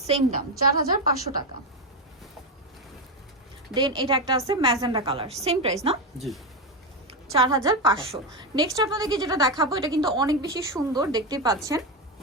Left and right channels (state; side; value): normal; both; correlation 0.10